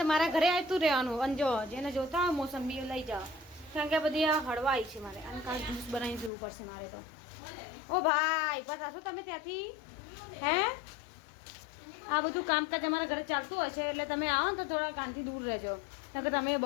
તો મારા ઘરે આવતું રહેવાનું. અને જો જેને જોતા હોય મોસંબી લઈ જાઓ કારણ કે બધી આ હળવાઈ છે મારે. અને કાલ જ્યુસ બનાવીને પીવું પડશે મારે તો. ઓ ભાઈ બસ આશો તમે ત્યાંથી હે આ બધું કામકાજ અમારા ઘરે ચાલતું હોય છે એટલે તમે આવો ને તો થોડા કાનથી દૂર રહેજો કારણ કે તમે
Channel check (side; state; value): right; drops out; at 6.3 s